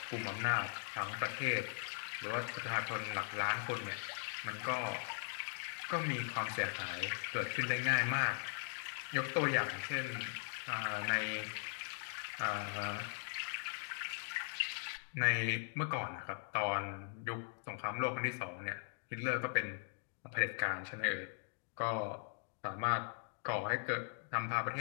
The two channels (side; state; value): right; silent; digital silence